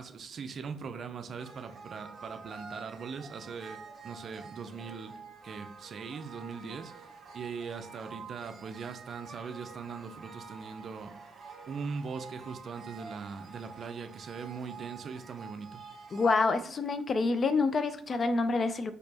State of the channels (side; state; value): both; normal; correlation 0.80